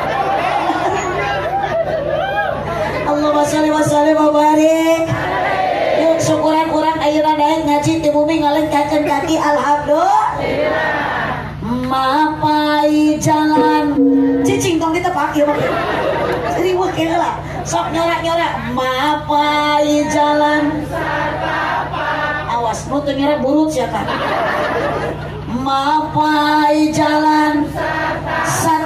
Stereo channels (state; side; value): identical; both; correlation 1.00